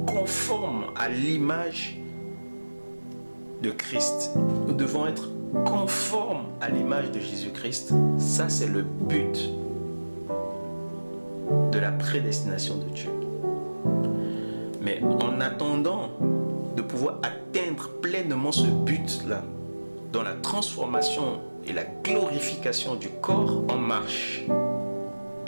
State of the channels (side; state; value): both; inverted; correlation -1.00